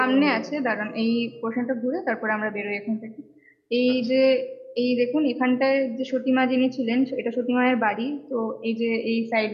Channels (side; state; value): both; identical; correlation 1.00